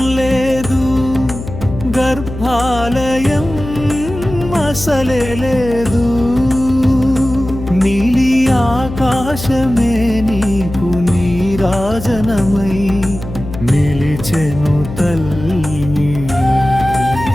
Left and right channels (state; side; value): noise; left; hum, 10 dB below the sound